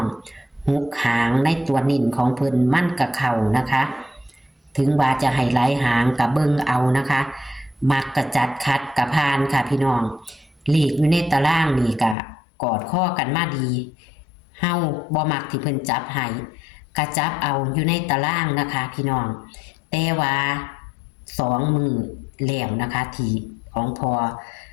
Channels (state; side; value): drops out; right; at 12.2 s